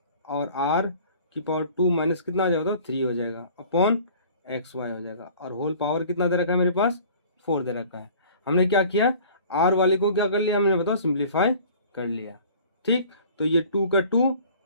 और आर की पावर 2 माइनस कितना हो जाएगा, तो 3 हो जाएगा अपॉन एक्स वाई हो जाएगा, और होल पावर कितना दे रखा है मेरे पास, 4 दे रखा है। हमने क्या किया, आर वाले को क्या कर लिया हमने बताओ, सिंप्लीफाई कर लिया। ठीक, तो ये 2 का 2,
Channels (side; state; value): both; inverted; correlation -0.47